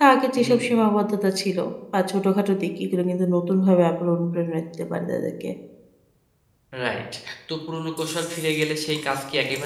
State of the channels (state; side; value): identical; both; correlation 1.00